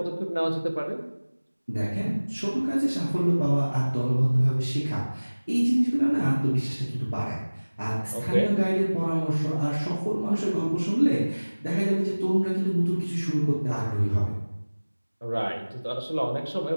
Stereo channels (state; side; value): inverted; both; correlation -1.00